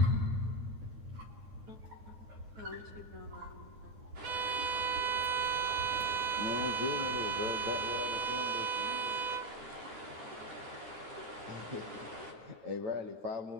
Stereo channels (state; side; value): late; left; 9.3 ms